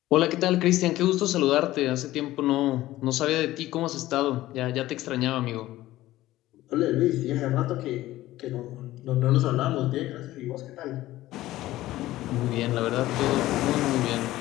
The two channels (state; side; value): quieter; right; 15.9 dB